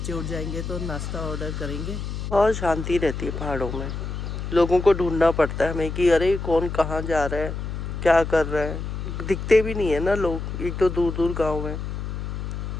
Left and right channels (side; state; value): left; noise; hum, 5 dB below the sound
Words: उठ जाएंगे तो नाश्ता ऑर्डर करेंगे। और शांति रहती है पहाड़ों में। लोगों को ढूंढना पड़ता है हमें कि अरे कौन कहाँ जा रहा है, क्या कर रहा है। दिखते भी नहीं है ना लोग, एक तो दूर दूर गांव है।